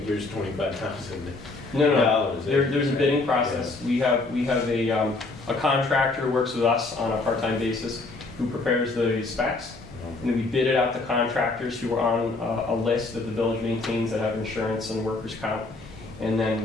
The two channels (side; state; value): right; quieter; 3.4 dB